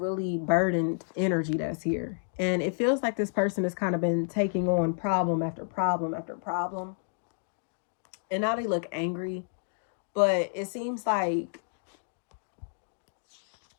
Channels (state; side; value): silent; right; digital silence